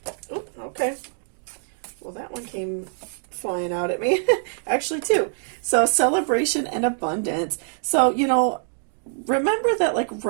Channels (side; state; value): left; silent; digital silence